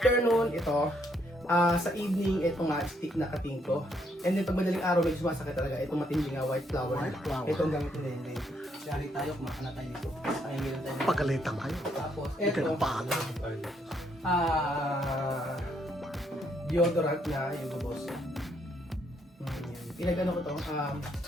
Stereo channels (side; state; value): both; normal; correlation 0.73